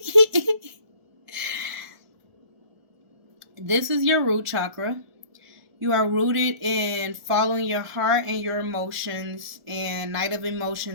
This is your root chakra. You are rooted in following your heart and your emotions. And Knight of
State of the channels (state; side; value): late; left; 1.4 ms